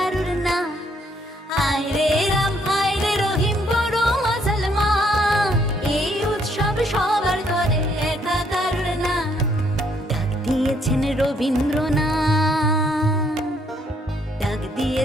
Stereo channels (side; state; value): both; normal; correlation 0.69